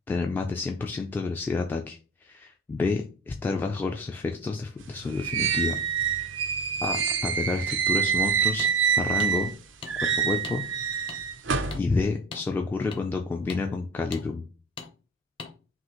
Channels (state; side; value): normal; both; correlation 0.32